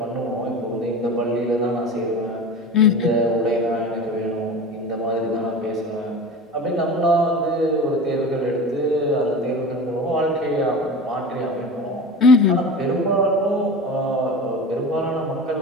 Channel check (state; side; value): normal; both; correlation 0.32